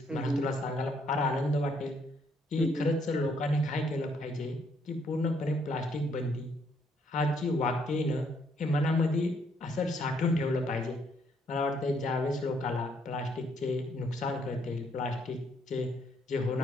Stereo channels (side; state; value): both; normal; correlation 0.70